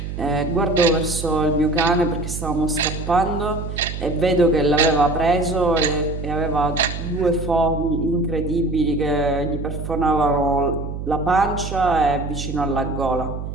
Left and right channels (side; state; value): right; noise; hum, 7 dB below the sound